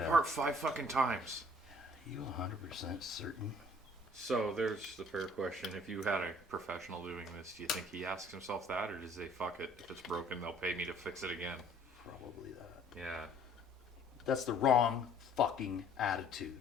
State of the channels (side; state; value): both; normal; correlation 0.56